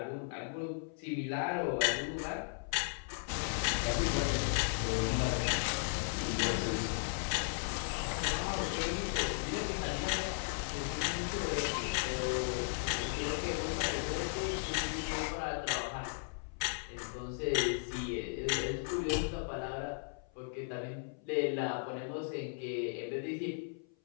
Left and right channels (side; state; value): right; silent; 54 dB below the other